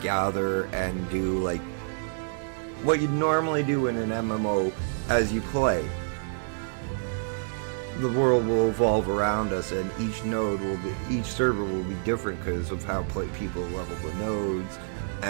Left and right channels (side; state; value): left; silent; digital silence